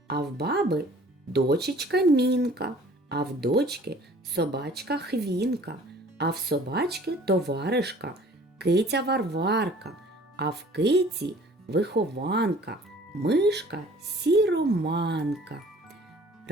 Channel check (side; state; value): both; normal; correlation 0.51